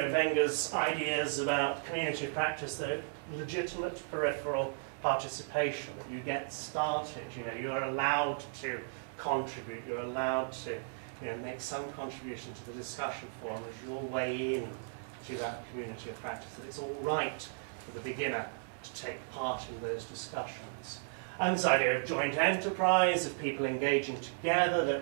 Wenger's ideas about community of practice, the legitimate peripheral participation, that you get started, you know, you're allowed to contribute, you're allowed to, you know, make some contribution to the discussion forum as your way in to that community of practice, that it's all right for the beginner to take part in those discussions. And this idea of joint enterprise, of people engaging together,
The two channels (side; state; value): left; silent; digital silence